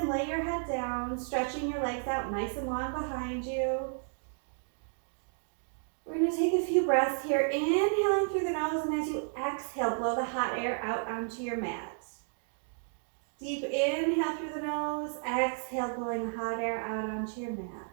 and lay your head down, stretching your legs out nice and long behind you. We're going to take a few breaths here, inhaling through the nose, and as you exhale, blow the hot air out onto your mat. Deep inhale through the nose, exhale, blowing the hot air out onto your mat.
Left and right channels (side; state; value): left; silent; 56 dB below the other